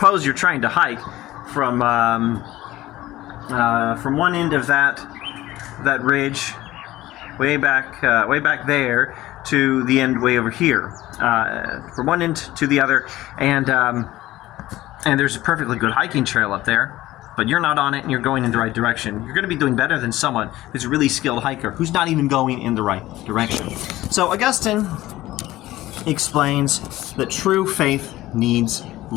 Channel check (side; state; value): right; quieter; 16.3 dB